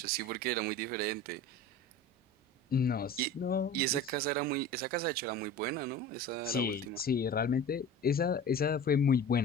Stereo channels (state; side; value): normal; both; correlation 0.35